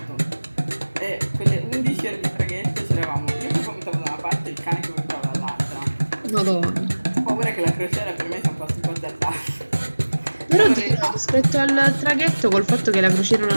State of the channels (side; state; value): both; inverted; correlation -1.00